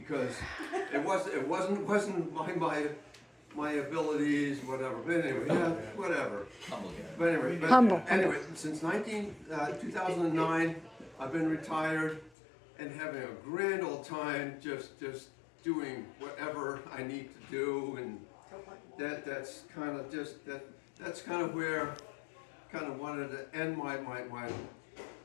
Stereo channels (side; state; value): right; drops out; at 12.3 s